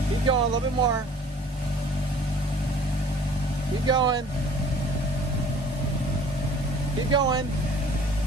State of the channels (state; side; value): normal; both; correlation 0.51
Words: Keep going, a little bit more. Keep going. Keep going.